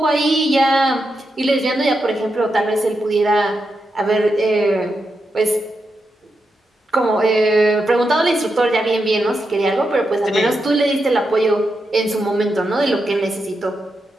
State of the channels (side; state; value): both; normal; correlation 0.86